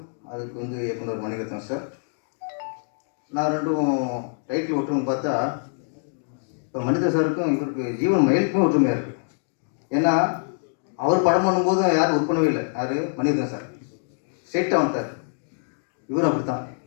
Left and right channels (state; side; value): silent; right; digital silence